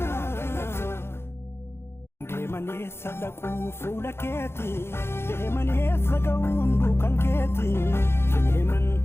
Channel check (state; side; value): late; right; 0.12 ms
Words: deemanii sadaquu fuula keeti deemanii saga'uun duukan keeti deeman